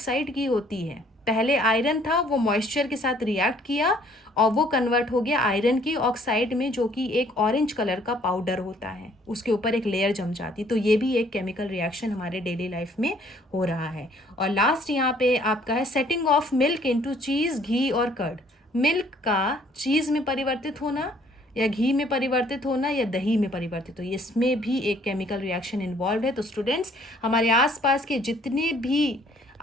की होती है। पहले आयरन था, वो मॉइस्चर के साथ रिएक्ट किया और वो कन्वर्ट हो गया आयरन की ऑक्साइड में, जो कि एक ऑरेंज कलर का पाउडर होता है, उसके ऊपर एक लेयर जम जाती। तो ये भी एक केमिकल रिएक्शन हमारे डेली लाइफ में हो रहा है। और लास्ट यहाँ पे आपका है सेटिंग ऑफ मिल्क इनटू चीज़, घी और कर्ड। मिल्क का चीज़ में परिवर्तित होना, या घी में परिवर्तित होना या दही में परिवर्तित हो, इसमें भी एक केमिकल रिएक्शन इन्वॉल्व है। तो स्टूडेंट्स, हमारे आसपास के जितने भी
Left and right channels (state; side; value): normal; both; correlation 0.61